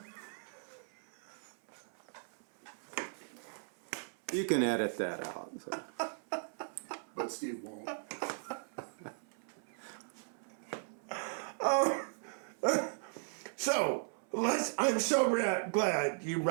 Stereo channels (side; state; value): left; silent; 53 dB below the other